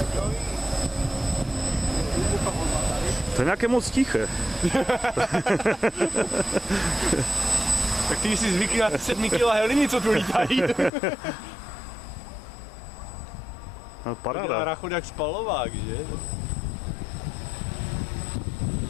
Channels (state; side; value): drops out; right; at 10.9 s